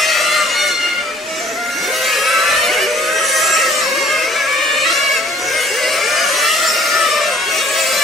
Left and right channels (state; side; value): normal; both; correlation 0.57